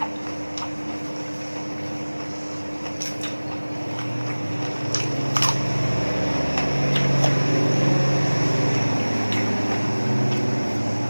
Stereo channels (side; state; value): both; inverted; correlation -1.00